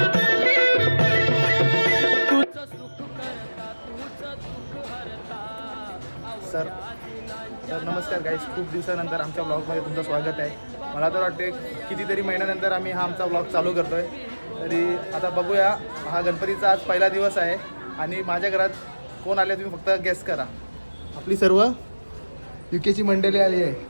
सर नमस्कार गाईज, खूप दिवसानंतर आमच्या ब्लॉगमध्ये तुमचं स्वागत आहे. मला तर वाटते कितीतरी महिन्यानंतर आम्ही हा आमचा ब्लॉग चालू करतो आहे. तरी आता बघूया, हा गणपतीचा आज पहिला दिवस आहे आणि माझ्या घरात कोण आले तुम्ही फक्त गेस करा. आपली सर्व युकेची मंडळी आली आहे.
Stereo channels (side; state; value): both; inverted; correlation -1.00